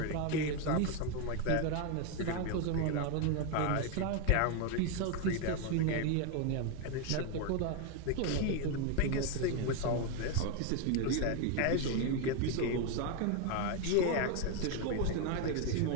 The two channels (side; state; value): both; different; correlation 0.01